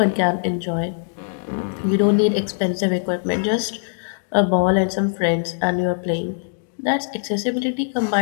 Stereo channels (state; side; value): silent; right; digital silence